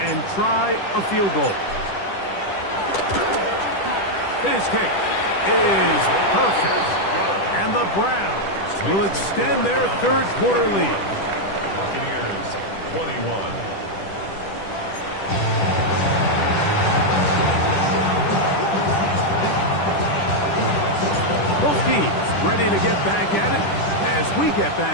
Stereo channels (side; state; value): right; late; 10 ms